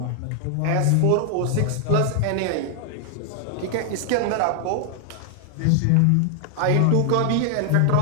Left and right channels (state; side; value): different; both; correlation 0.00